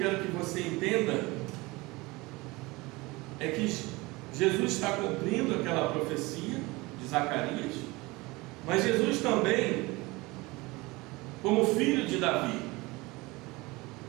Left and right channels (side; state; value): left; quieter; 22.8 dB